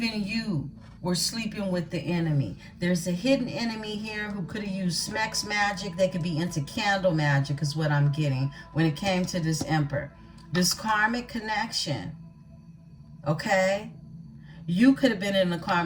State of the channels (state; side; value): identical; both; correlation 1.00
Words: you were sleeping with the enemy. There's a hidden enemy here who could have used Smex magic. They could be into candle magic is what I'm getting when it came to this Emperor. This karmic connection, okay? You could have been in a